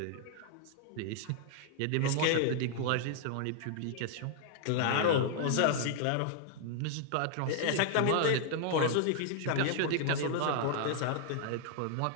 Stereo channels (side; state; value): both; different; correlation -0.01